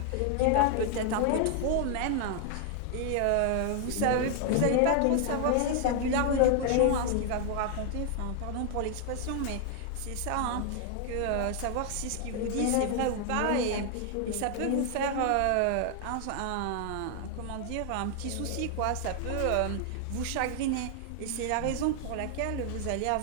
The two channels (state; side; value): different; both; correlation 0.00